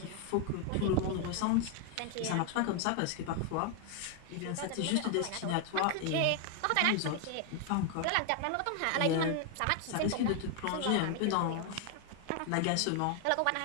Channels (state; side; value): different; both; correlation 0.00